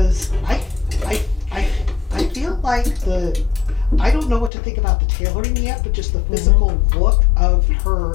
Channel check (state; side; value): drops out; right; at 4.5 s